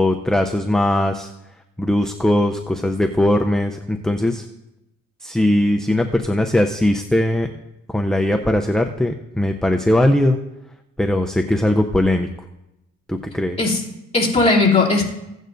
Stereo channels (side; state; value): both; normal; correlation 0.80